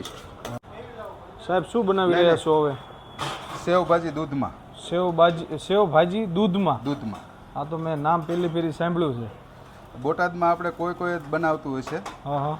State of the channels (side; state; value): both; identical; correlation 1.00